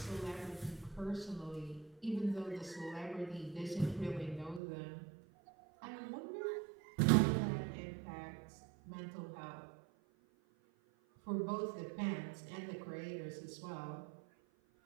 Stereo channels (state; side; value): drops out; left; at 4.6 s